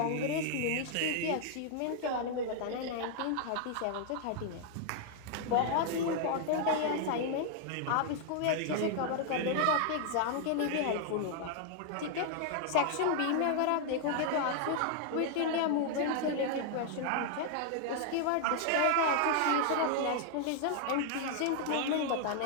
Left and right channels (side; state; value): both; different; correlation 0.00